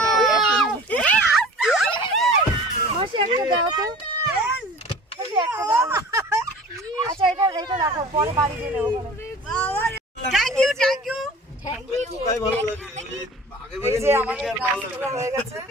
আচ্ছা এটা রাখো, পরে বাড়ি দিয়ে নেবো। থ্যাংক ইউ এই যে আমাদের গাছগুলো হয়ে গেছে।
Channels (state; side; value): normal; both; correlation 0.42